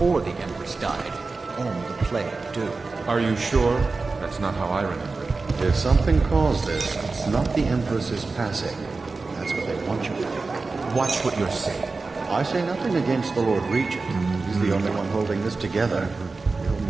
the Empress died. And the plague, too. Are you sure? That's not how I remember it. If something caused this, it's not the Empress's passing. That's what they want you to think. Watch what you're saying. I say nothing against the Lord Regent. He's the only one holding this together. He'll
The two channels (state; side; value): quieter; left; 3.9 dB